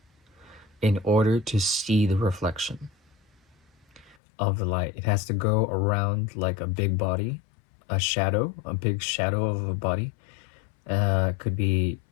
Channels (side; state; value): right; drops out; at 4.2 s